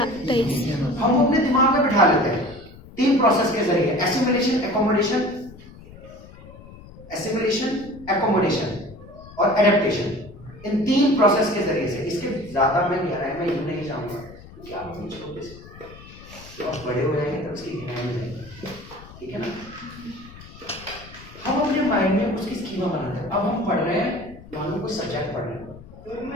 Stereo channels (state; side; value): noise; left; rumble, 19 dB below the sound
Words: हम वो अपने दिमाग में बिठा लेते हैं 3 प्रोसेस के जरिए, एसिमिलेशन, एकोमोडेशन और एडेप्टेशन। इन 3 प्रोसेस के जरिए से, इसके ज्यादा मैं गहराई में यूं नहीं जाऊंगा क्योंकि आप मुझे छोटे से तो आप बड़े हो जाएंगे तब उसकी गहराई में जाएंगे, ठीक है ना। हम अपने माइंड में उसकी स्कीमा बनाते हैं। अब हम पढ़ रहे हैं, मान लो कोई सब्जेक्ट पढ़ रहे हैं,